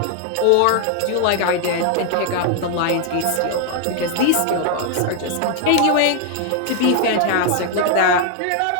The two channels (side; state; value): both; different; correlation 0.00